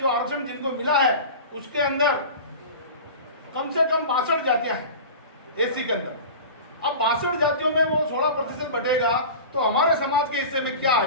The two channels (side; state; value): both; inverted; correlation -0.34